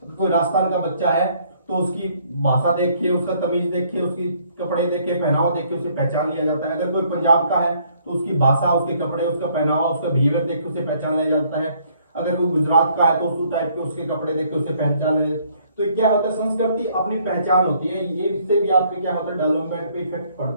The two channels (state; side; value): inverted; both; correlation -0.64